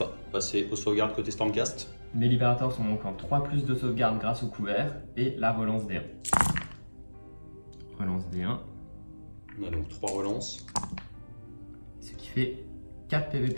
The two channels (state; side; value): inverted; both; correlation -1.00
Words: Passer aux sauvegardes côté Stormcast. Mes libérateurs sont donc en 3+ de sauvegarde grâce au couvert et la relance D1. Relance D1. On a donc 3 relances. Ce qui fait 4 PV